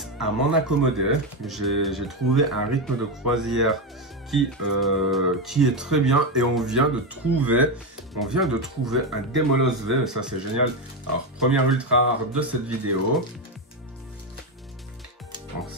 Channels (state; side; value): normal; both; correlation 0.10